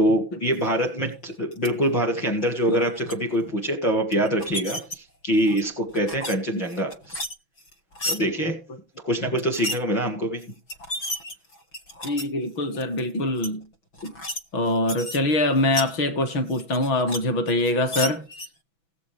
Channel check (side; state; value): right; late; 6.0 ms